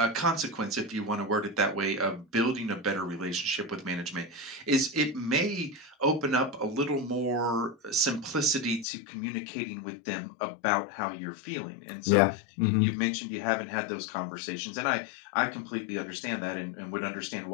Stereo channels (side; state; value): right; drops out; at 8.8 s